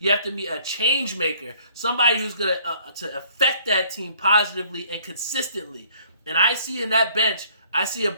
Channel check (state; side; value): inverted; both; correlation -0.59